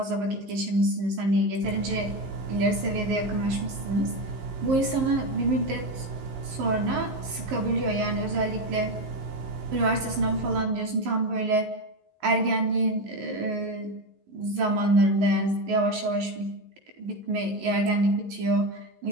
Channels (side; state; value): left; late; 11 ms